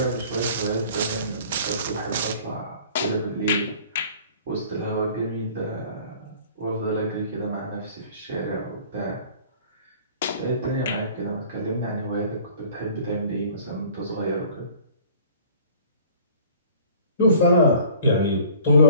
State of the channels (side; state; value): both; inverted; correlation -0.50